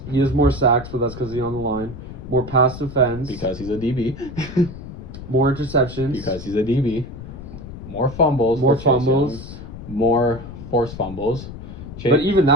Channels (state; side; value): noise; left; rumble, 12 dB below the sound